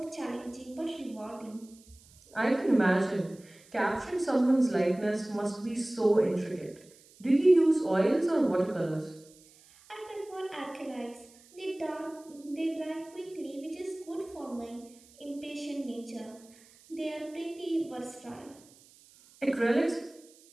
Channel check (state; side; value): noise; right; hiss, 26 dB below the sound